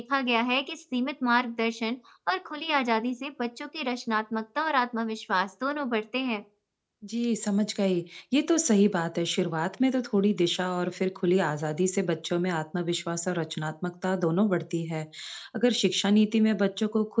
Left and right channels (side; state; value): both; identical; correlation 1.00